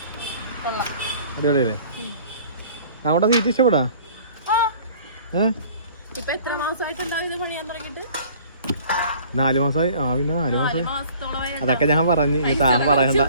അടിപൊളിയല്ലേ? അങ്ങോട്ടാ സീറ്റ് ഇഷ്ടപ്പെടാ? 4 മാസമായി. പിന്നെ 4 മാസമായി. അതൊക്കെ ഞാൻ പറഞ്ഞു, താൻ പറയണ്ട.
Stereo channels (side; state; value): both; inverted; correlation -0.51